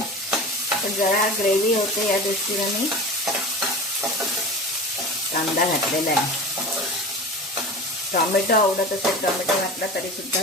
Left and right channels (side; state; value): both; normal; correlation 0.33